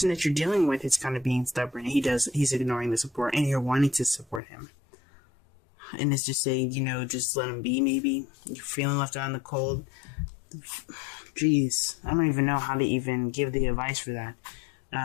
that you're dealing with is kind of being stubborn. He's ignoring the support, and you're wanting to support him. And it's just saying, just let him be, maybe. You're feeling left out in the cold. Jeez, I don't even know how to even give the advice for that.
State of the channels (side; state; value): right; drops out; at 4.4 s